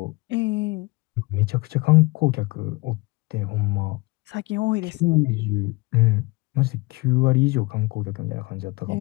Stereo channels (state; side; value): quieter; right; 24.1 dB